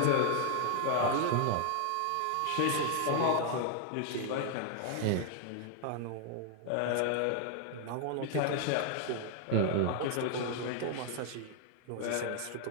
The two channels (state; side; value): different; both; correlation 0.00